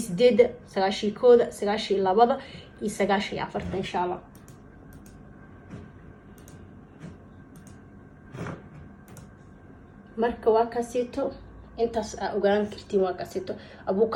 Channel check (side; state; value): both; identical; correlation 1.00